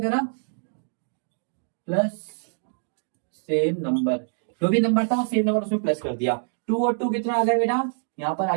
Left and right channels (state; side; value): silent; left; digital silence